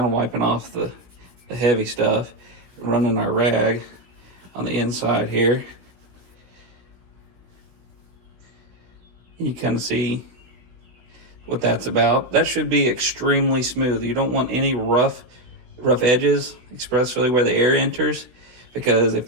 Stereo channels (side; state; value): left; late; 16 ms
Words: of wiping off the heavy stuff, running our rag on the inside here. You kind of see what that's about. That should be extremely smooth. You don't want any rough edges, especially where the air enters, because if